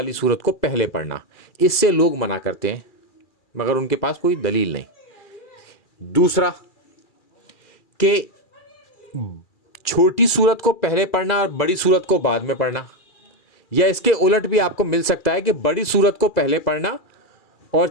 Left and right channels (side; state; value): right; late; 2.4 ms